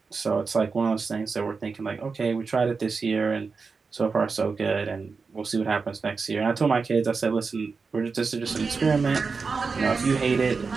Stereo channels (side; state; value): left; quieter; 4.8 dB